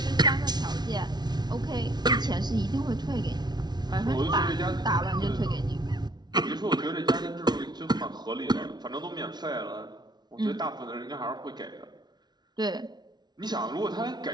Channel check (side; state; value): left; late; 0.20 ms